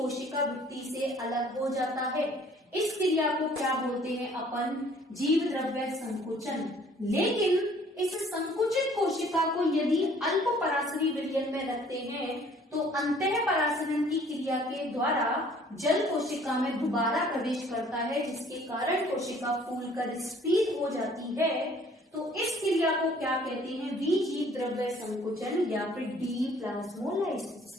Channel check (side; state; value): both; normal; correlation 0.56